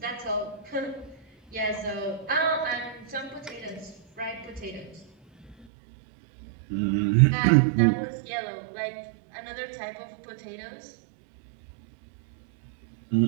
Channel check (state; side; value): drops out; left; at 5.7 s